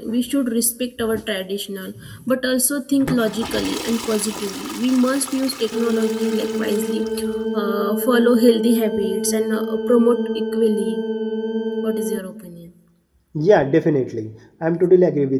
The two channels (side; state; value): both; identical; correlation 1.00